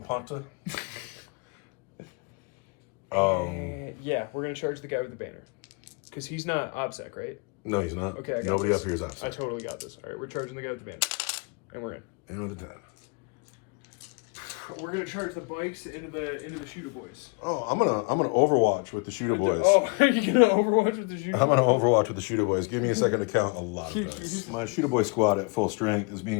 Yeah, we're going to charge the guy with the banner. Because he's not OBSEC, right? No, he's not. Okay, I got Nobody this. up here is I outside. totally got this. All right, we're charging the guy with the banner. And we're in. And with a 10. We're going to charge the bikes into the shooter boys. Oh, I'm gonna Overwatch with the shooter boys. Oh, are you going to overwatch with the shooter I'm gonna Overwatch with the shooter boys. Give me a second to count a lot of dice. My shooter boy squad at full strength is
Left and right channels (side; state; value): right; quieter; 32.4 dB